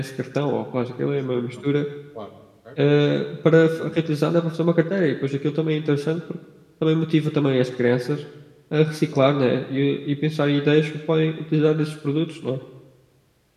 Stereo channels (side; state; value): both; identical; correlation 1.00